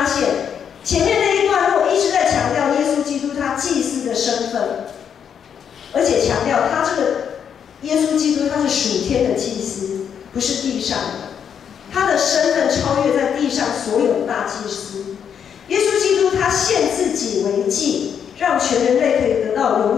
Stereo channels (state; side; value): quieter; right; 7.9 dB